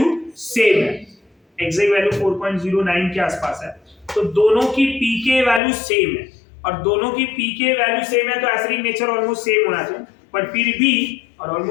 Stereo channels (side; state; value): right; drops out; at 5.6 s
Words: सेम है, एग्जैक्ट वैल्यू 4.09 के आसपास है, तो दोनों की पीके वैल्यू सेम है, और दोनों की पीके वैल्यू सेम है तो एसिडिक नेचर ऑलमोस्ट सेम होना चाहिए, बट फिर भी, और